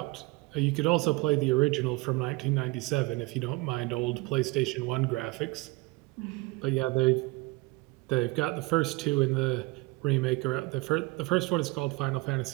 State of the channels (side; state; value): left; quieter; 22.5 dB